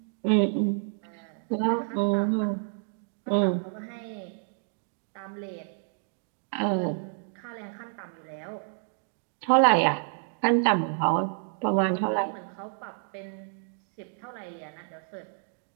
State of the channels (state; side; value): silent; left; digital silence